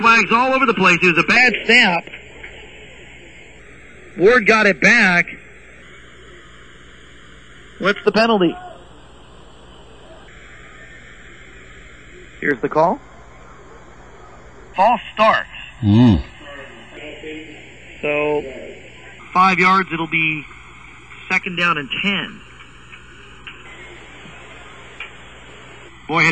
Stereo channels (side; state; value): both; identical; correlation 1.00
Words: all over the place. It was a bad snap. Ward got it back. What's the penalty? Here's the call. False start. So, 5 yards, it'll be 2nd down and 10. Boy,